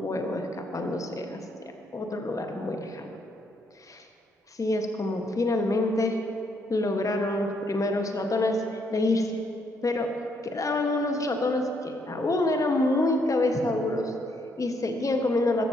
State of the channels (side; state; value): both; normal; correlation 0.73